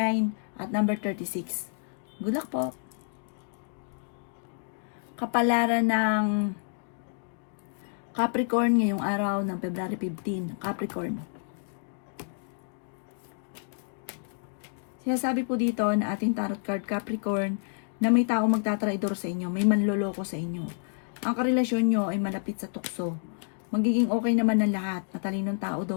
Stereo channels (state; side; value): silent; right; digital silence